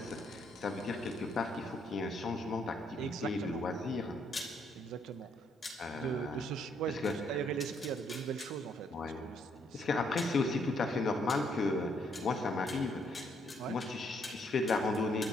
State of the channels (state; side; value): normal; both; correlation 0.71